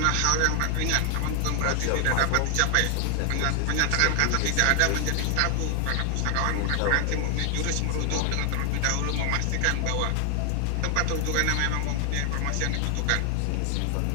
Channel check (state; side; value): different; both; correlation 0.00